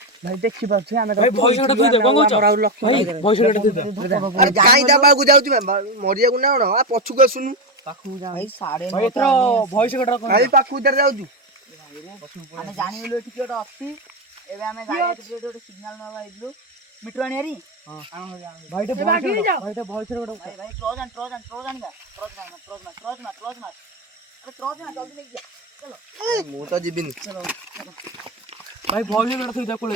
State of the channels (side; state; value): both; normal; correlation 0.10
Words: ଭାଇ ଦେଖି ପାରୁଛେ ଆମେ ଭାଇ ଭଏସ କୋଟା ଥୋଇ ଦେ କଣ କହୁଛ ଭାଇ ଭଏସ କୋଟା ଥୋଇ ଦେ ଆରେ କାଇଁ ତା ପାଖକୁ ଯାଉଛୁ ମରିବାକୁ ନା କଣ ଆ ପଛକୁ ଆସୁନୁ ପାଖକୁ ଯା ଭାଇ ସାଡେ ଭାଇ ଏଥର ଭଏସ କୋଟା କଣ ଭାଇ ପାଖକୁ ଉଧର ଯାଉଛୁ ଆମେ ଜାଣିଗଲୁ ଏଠି କିଏ ଗୋଟେ ଅଛି ଏବେ ଆମେ ଗାଡି ଗୋଟେ ସିଗ୍ନାଲ ନବା ହେଇଥିଲୁ ମିଟର ଆଣିଆରି ଭାଇ ଟେ ଭଏସ ଭାଇ ଟେ ଭଏସ କୋଟା ଭାଇ ଭାଇ ଟ୍ରଜ ଆଣିବା ଟ୍ରଜ ମାର ଆରେ ଟ୍ରଜ ନା ଜଲ୍ଦି ନେଇକି ଯା ମୁଁ ତ ଯିବିନି ଭାଇ ଭଏସ କୋଟା ଥୋଇ ଦେ କୋଳେ